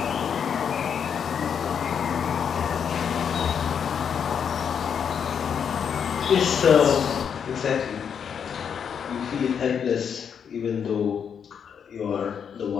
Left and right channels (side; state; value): right; quieter; 7.5 dB